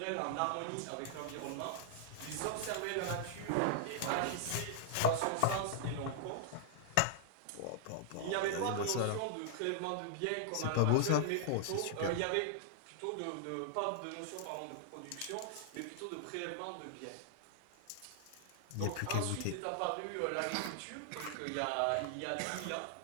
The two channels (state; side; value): different; both; correlation -0.01